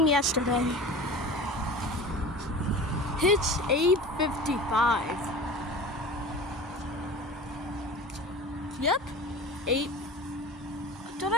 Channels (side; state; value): both; normal; correlation 0.36